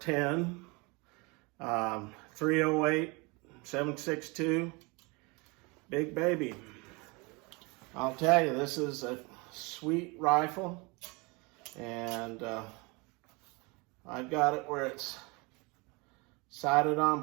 308, 7.62, big baby. I'll tell you, this is a sweet rifle, and I've got it where it's sighted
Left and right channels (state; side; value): quieter; left; 27.7 dB